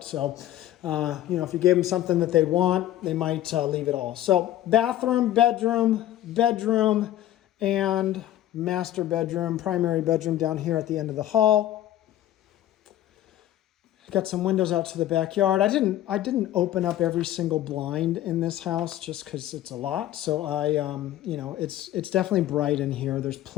So, you know, if you gave them something that they want, they might leave it all. So bathroom, bedroom, and master bedroom, primary bedroom down here at the end of the hall. Got some windows out to the backyard. I didn't open up every single blind in this house just because it's a lot. So you know, it's definitely bright in here. There's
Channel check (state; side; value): quieter; right; 13.1 dB